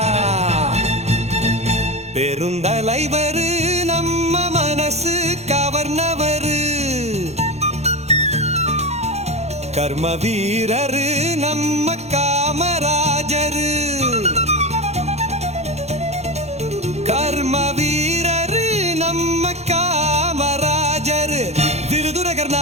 பெருந்தலைவரு நம்ம மனசு கவர்னவரு, கர்ம வீரரு நம்ம காமராஜரு, கர்ம வீரரு நம்ம காமராஜரு. விருதுநகர்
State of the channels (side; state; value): left; late; 0.31 ms